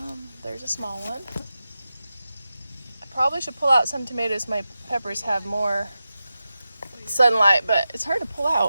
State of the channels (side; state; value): both; inverted; correlation -0.92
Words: There's a small one. I probably should pull out some tomatoes. My peppers have more sunlight, but it's hard to pull